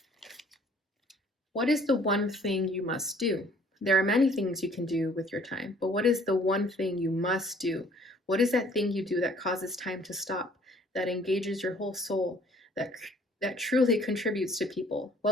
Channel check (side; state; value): both; normal; correlation 0.57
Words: What is the one thing you must do? There are many things you can do with your time, but what is the one thing you must do? What is that thing you do that causes time to stop, that engages your whole soul, that truly contributes to people?